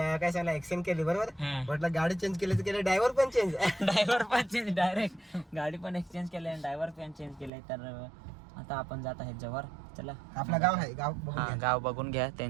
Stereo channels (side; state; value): left; drops out; at 7.5 s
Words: सांगला एक्सचेंज केली बरोबर. म्हटलं गाडी चेंज केली तर केली, ड्रायव्हर पण चेंज डायरेक्ट गाडी पण एक्सचेंज केली आणि ड्रायव्हर पण चेंज केलाय. तर आता आपण जात आहे जव्हार. चला आपलं गाव आहे, गाव बघून घ्या